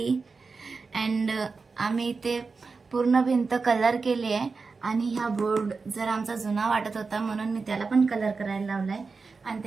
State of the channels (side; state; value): left; quieter; 4.5 dB